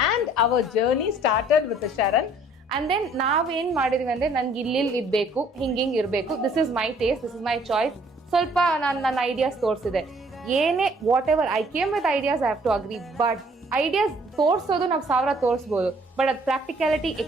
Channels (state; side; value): normal; both; correlation 0.59